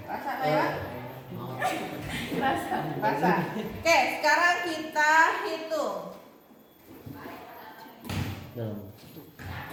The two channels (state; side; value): identical; both; correlation 1.00